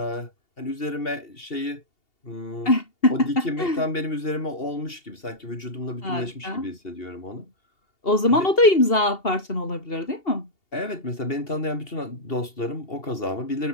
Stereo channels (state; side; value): late; right; 2.8 ms